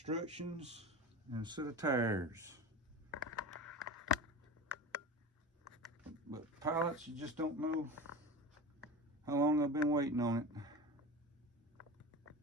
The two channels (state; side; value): normal; both; correlation 0.31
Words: and a set of tires. But pilots, you just don't know how long I've been waiting on it.